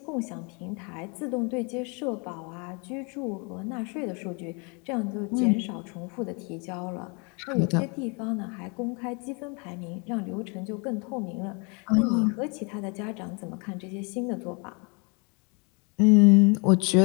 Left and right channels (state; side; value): quieter; right; 33.1 dB